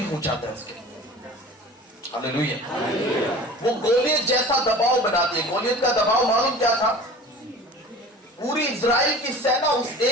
हो जाता है उसके। हालेलुया। वो गोलियत जैसा दबाव बनाती है। गोलियत का दबाव मालूम क्या था? पूरी इजराइल की सेना उस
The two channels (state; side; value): normal; both; correlation 0.40